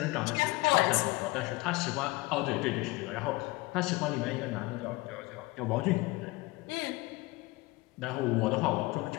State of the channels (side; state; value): right; quieter; 22.2 dB